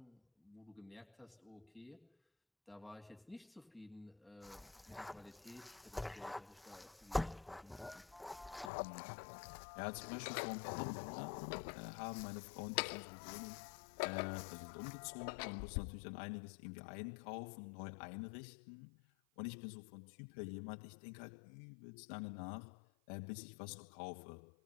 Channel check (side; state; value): right; drops out; at 8.7 s